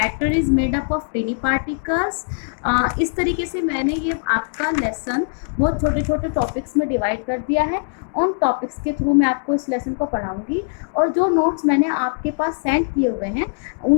is made up of टिनी particles. इस तरीके से मैंने ये आपका लेसन बहुत छोटे छोटे टॉपिक्स में डिवाइड कर दिया है. उन टॉपिक्स के थ्रू मैं आपको इस लेसन को पढ़ाऊंगी और जो नोट्स मैंने आपके पास सेंड किए हुए हैं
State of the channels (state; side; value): silent; right; 65 dB below the other